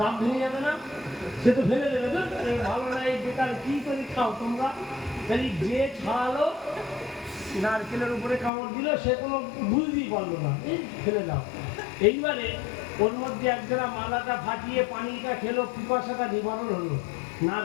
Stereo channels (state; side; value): drops out; right; at 8.5 s